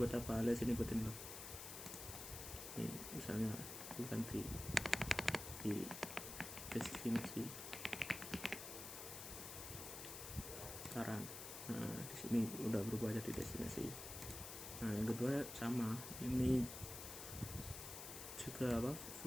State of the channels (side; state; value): left; noise; hiss, 8 dB below the sound